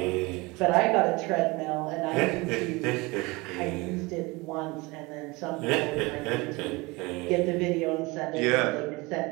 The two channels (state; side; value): quieter; left; 24.3 dB